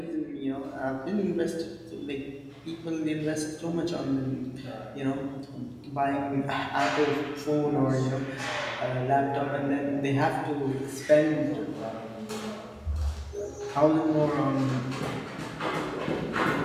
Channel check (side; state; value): both; identical; correlation 1.00